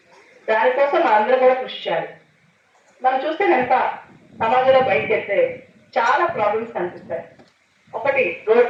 దానికోసం అందరూ కూడా కృషి చేయాలి. మనం చూస్తే కనుక సమాజంలో బయటకు వెళ్తే చాలా ప్రాబ్లమ్స్ కనిపిస్తాయి. ఒకటి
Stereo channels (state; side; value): identical; both; correlation 1.00